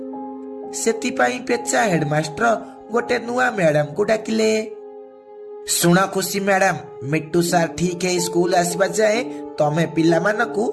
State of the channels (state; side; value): identical; both; correlation 1.00